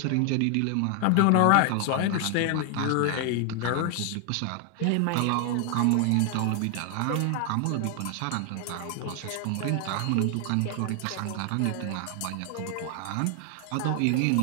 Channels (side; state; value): both; different; correlation 0.00